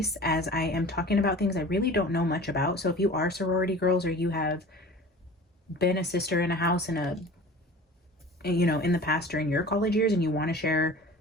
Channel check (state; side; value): normal; both; correlation 0.40